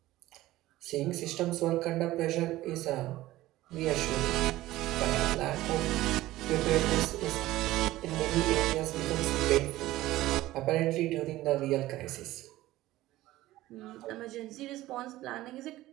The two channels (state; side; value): quieter; left; 16.4 dB